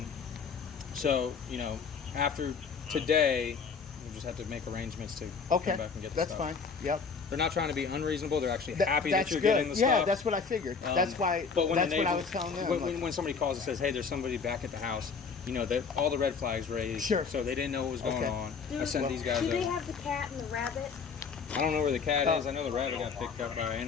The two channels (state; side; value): quieter; right; 5.5 dB